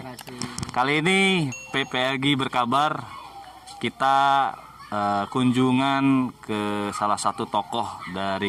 Kali ini PPLG berkabar kita kunjungan ke salah satu tokoh dari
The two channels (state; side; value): identical; both; correlation 1.00